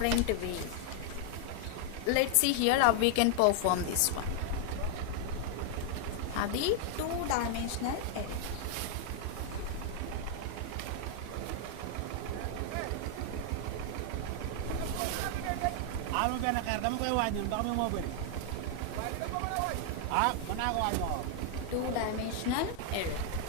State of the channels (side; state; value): both; different; correlation 0.00